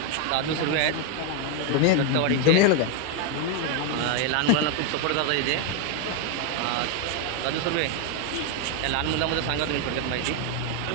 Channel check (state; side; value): different; both; correlation 0.01